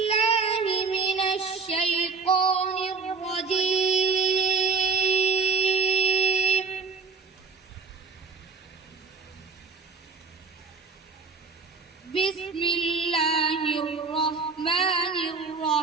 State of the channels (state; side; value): quieter; left; 4.7 dB